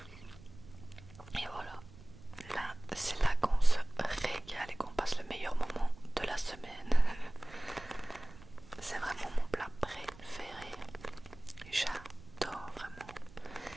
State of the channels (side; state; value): right; noise; rumble, 20 dB below the sound